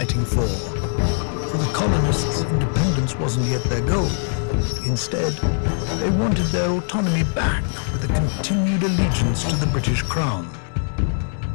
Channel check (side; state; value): right; silent; digital silence